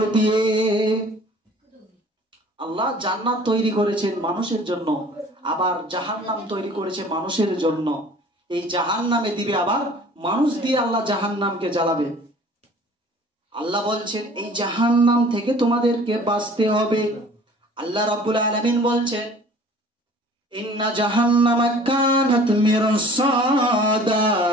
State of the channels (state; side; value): normal; both; correlation 0.49